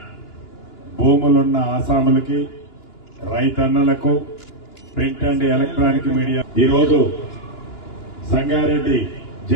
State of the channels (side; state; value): right; late; 2.9 ms